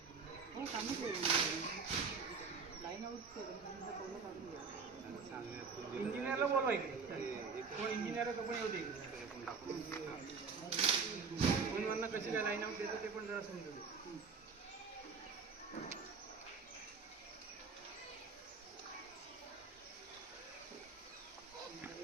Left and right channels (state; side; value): quieter; left; 5.2 dB